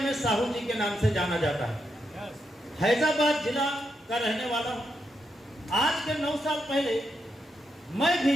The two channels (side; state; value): both; normal; correlation 0.82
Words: साहू जी के नाम से जाना जाता है। हैदराबाद जिला का रहने वाला हूं। आज के 9 साल पहले मैं भी